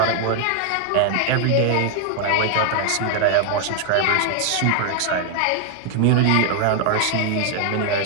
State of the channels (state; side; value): different; both; correlation 0.00